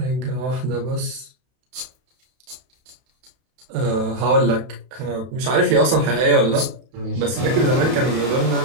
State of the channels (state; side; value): late; left; 31 ms